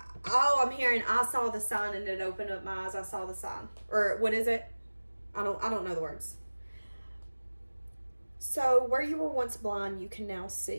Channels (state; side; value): inverted; both; correlation -1.00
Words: oh, I'm hearing, I saw the sign and it opened up my eyes. I saw the sign. Or what is it? I don't know the words. So where you were once blind, you can now